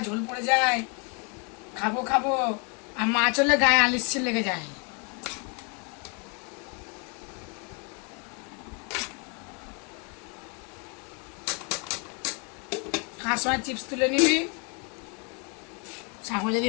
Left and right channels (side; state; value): right; quieter; 35.6 dB